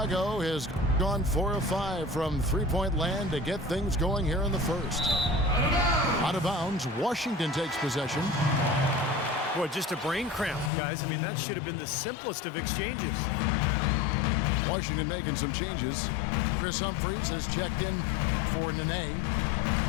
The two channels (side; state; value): right; drops out; at 10.7 s